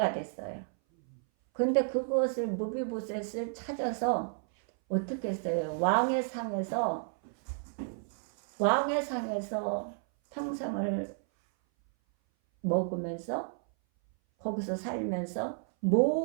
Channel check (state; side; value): silent; left; 57 dB below the other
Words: 됐어요. 그런데 그것을 무비보셋을 찾아서 어떻게 했어요? 왕의 상에서 평생을 먹으면서 거기서 살면서